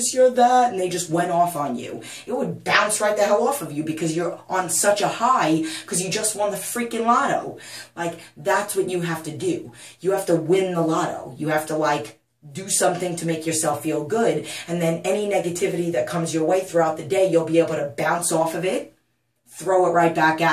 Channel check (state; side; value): identical; both; correlation 1.00